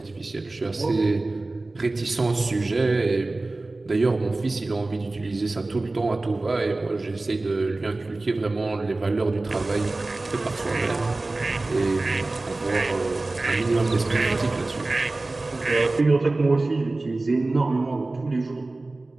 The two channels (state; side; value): quieter; left; 3.1 dB